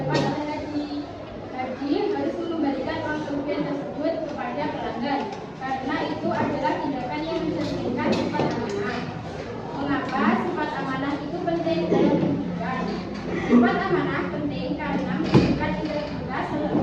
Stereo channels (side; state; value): both; identical; correlation 1.00